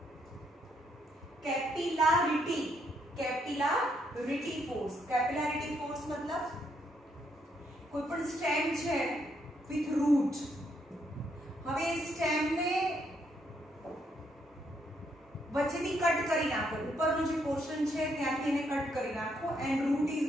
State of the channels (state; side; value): normal; both; correlation 0.74